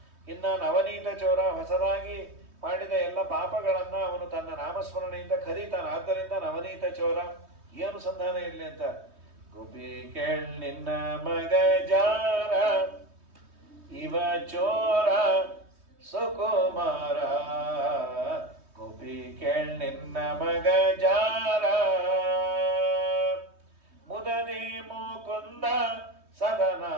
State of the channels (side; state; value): left; late; 3.2 ms